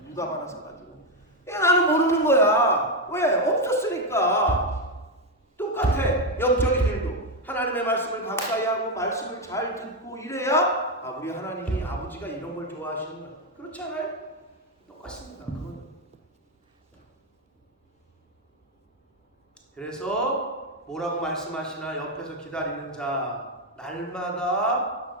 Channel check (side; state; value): both; normal; correlation 0.07